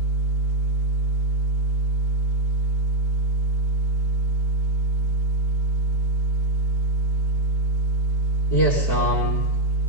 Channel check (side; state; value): both; normal; correlation 0.04